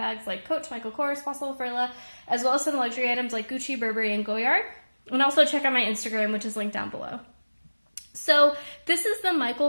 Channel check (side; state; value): both; inverted; correlation -1.00